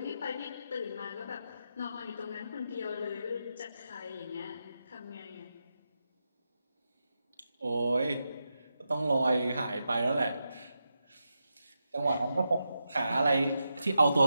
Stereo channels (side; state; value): both; inverted; correlation -0.87